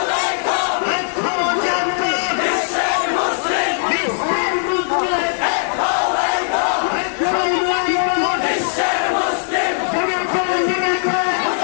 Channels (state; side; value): silent; right; digital silence